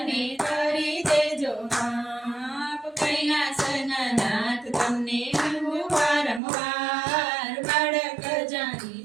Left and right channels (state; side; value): drops out; left; at 6.4 s